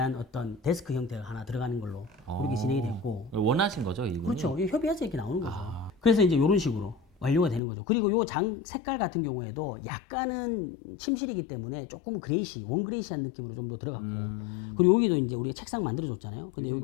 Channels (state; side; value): drops out; right; at 7.6 s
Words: 어떤 데스크 형태가 하나 들어가는 걸로 그렇게 진행이 됐고. 원하신 거죠, 이분이? 그렇죠. 이게 협의해서 이렇게 나오는 거죠. 그래서 이제 이런 식으로 완료가 되는 거죠. 그리고 요 장 색깔 같은 경우에도 약간은 침실이기 때문에 조금 그레이시, 원그레이시한 느낌으로 좀 더 들어갔고. 그리고 여기도 이제 우리가 책상 만들어줬잖아요. 근데 요즘